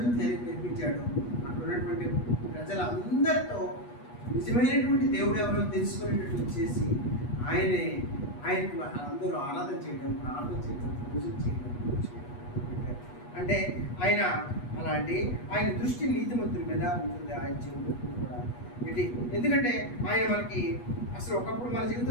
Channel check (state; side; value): late; right; 8.3 ms